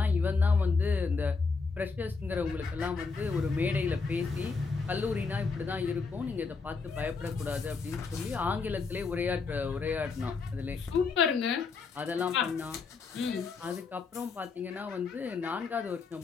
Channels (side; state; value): right; quieter; 4.6 dB